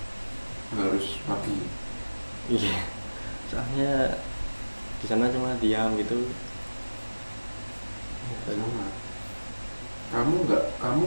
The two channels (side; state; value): both; inverted; correlation -1.00